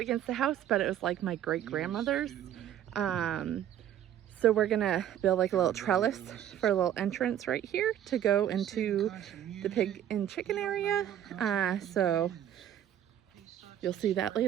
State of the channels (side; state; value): left; quieter; 10.8 dB